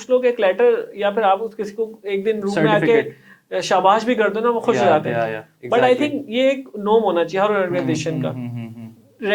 लोग एक लेटर या फिर आप किसी को एक दिन रूम में आके शाबाश भी कर दो ना, वो खुश हो जाते हैं। बट आई थिंक ये एक नॉर्म होना चाहिए हर ऑर्गेनाइजेशन का,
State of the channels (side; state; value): both; identical; correlation 1.00